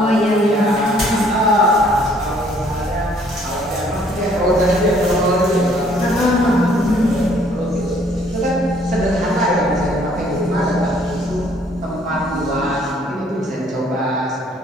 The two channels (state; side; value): normal; both; correlation 0.61